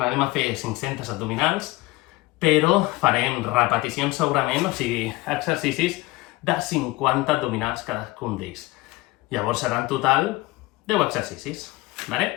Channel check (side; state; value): right; quieter; 20.7 dB